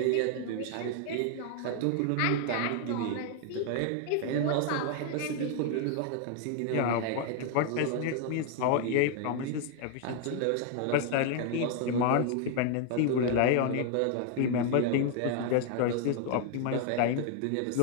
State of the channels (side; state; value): both; different; correlation 0.00